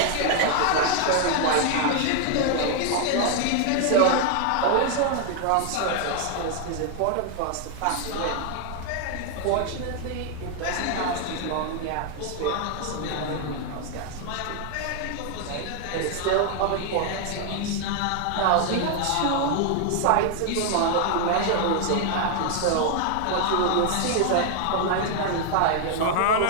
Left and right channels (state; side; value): different; both; correlation 0.00